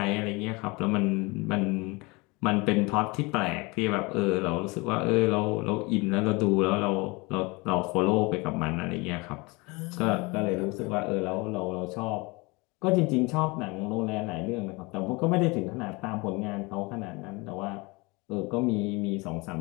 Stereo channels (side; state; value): right; quieter; 26.0 dB